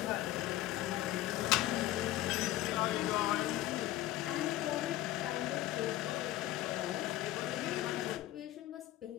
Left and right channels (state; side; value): quieter; right; 14.8 dB